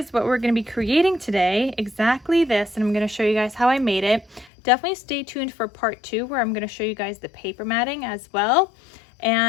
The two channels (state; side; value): drops out; right; at 4.5 s